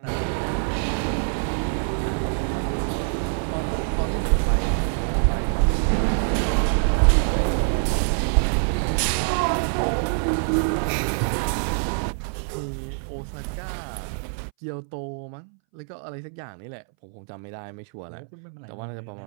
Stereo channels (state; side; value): silent; left; 62 dB below the other